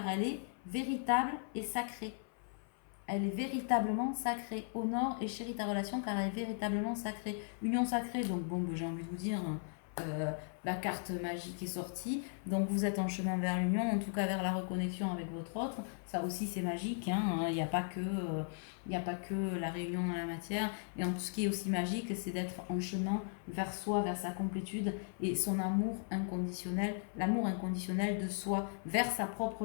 elle est véritable et sacrée. Elle est véritablement sacrée. Honore et chéris ta relation car elle est véritablement sacrée. Union sacrée, donc bon, j'ai envie de vous dire, la carte magique est sortie. Donc vous êtes en chemin vers l'union, en tout cas vers la reconnexion avec votre autre. Ça aussi c'est magique. Il n'y a pas que la réunion dans la matière. Et en tout ce qui est aussi magique, c'est d'être en chemin vers soi, vers sa complétude et son amour inconditionnel, l'amour inconditionnel de soi, vers sa propre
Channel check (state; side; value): silent; right; 53 dB below the other